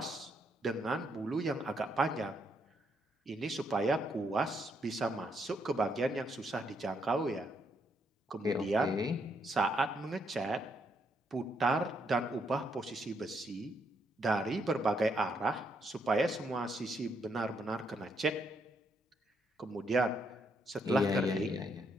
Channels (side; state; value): both; normal; correlation 0.75